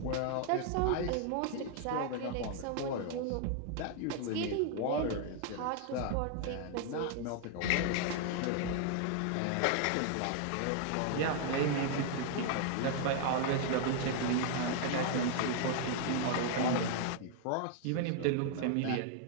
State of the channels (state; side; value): different; both; correlation 0.00